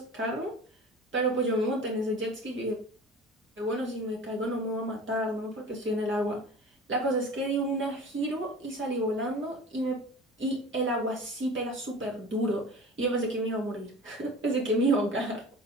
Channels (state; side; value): normal; both; correlation 0.38